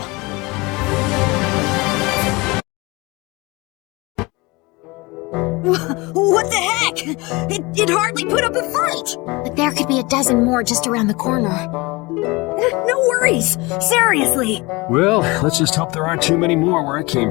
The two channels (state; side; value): quieter; right; 24.2 dB